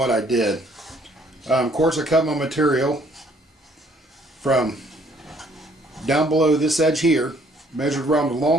I did. Of course, I cut my material from down below this edge here, measured around the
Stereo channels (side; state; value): both; normal; correlation 0.62